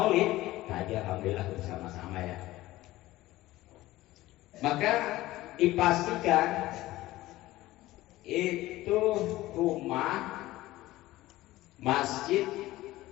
tadi alhamdulillah bersama-sama ya, maka dipastikan itu rumah, masjid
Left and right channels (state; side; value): quieter; right; 17.0 dB